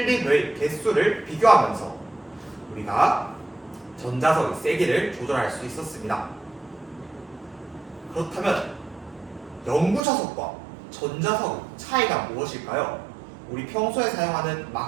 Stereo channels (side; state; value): left; drops out; at 10.0 s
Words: 개수를 비교하면서 우리가 전자석의 세기를 조절할 수 있었습니다. 그렇다면 영구자석과 전자석의 차이가 무엇일까요? 우리 평소에 사용하는